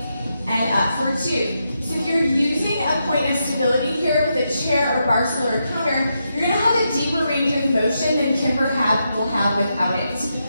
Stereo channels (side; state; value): both; inverted; correlation -0.84